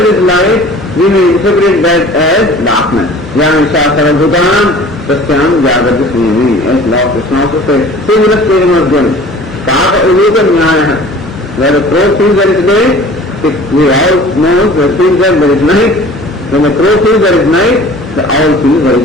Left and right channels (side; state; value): both; normal; correlation 0.45